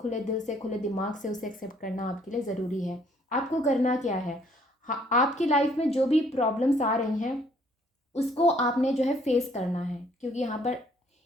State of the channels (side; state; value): both; normal; correlation 0.63